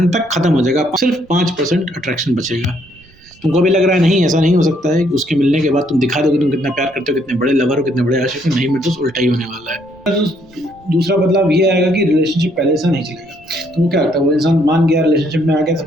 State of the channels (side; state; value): right; noise; rumble, 28 dB below the sound